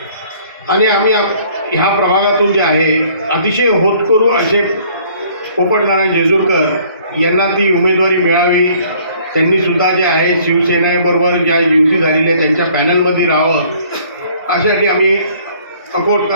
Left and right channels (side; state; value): both; inverted; correlation -0.57